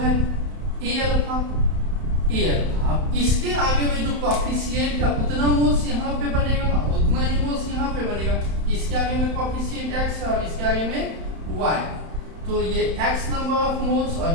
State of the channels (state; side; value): late; left; 31 ms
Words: A अल्फा। अब इसके आगे में जो कॉफिशिएंट का उतना मोल्स यहाँ पे बनेगा, उतना ही मोल्स यहाँ पे बनेगा। इसके आगे में कॉफिशिएंट x है और इसके आगे में y। तो ये x नंबर ऑफ मोल्स और